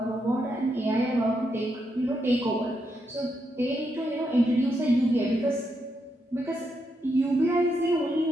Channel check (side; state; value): both; normal; correlation 0.81